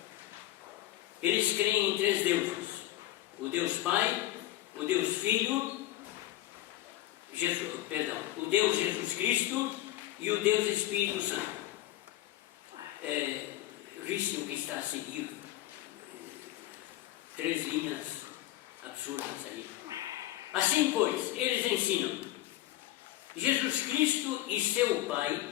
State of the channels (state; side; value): quieter; right; 15.0 dB